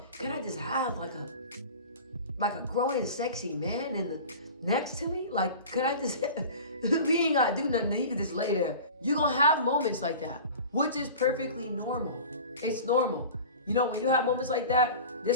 can I just have like a growing sexy man next to me? Like, could I just we ain't gotta do nothing, he can just lay there. You're gonna have moments like that, which is perfectly normal. It's normal. When you have moments like that,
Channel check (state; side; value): inverted; both; correlation -0.37